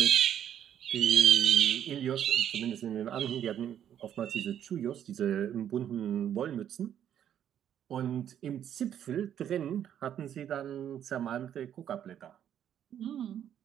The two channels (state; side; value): quieter; left; 9.9 dB